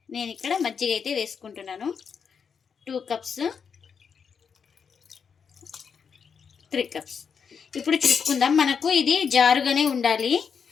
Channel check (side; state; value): right; quieter; 6.5 dB